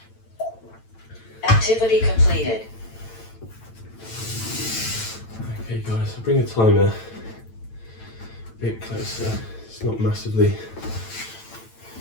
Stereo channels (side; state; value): right; late; 9.0 ms